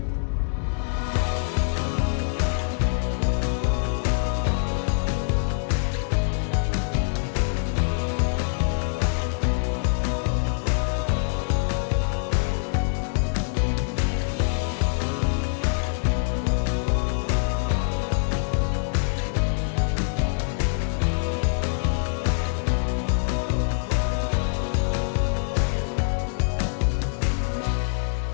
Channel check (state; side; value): silent; right; digital silence